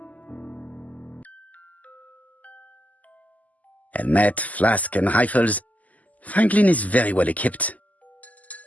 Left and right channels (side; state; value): right; late; 0.076 ms